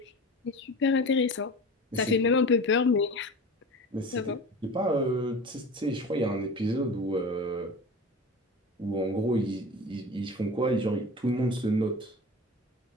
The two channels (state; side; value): normal; both; correlation 0.34